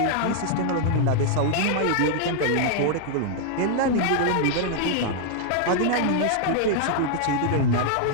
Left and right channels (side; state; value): both; different; correlation -0.01